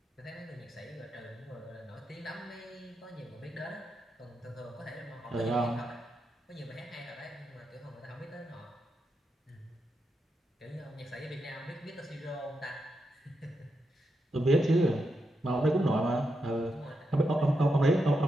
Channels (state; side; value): normal; both; correlation 0.85